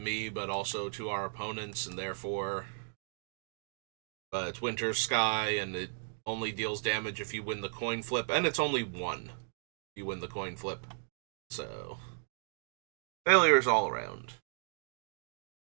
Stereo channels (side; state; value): left; silent; digital silence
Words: but also to our opponents, and therefore. But it's Winter Sky, and it only deals damage if you win the coin flip, and it's only 1 if you win the coin flip. So. Failures all around.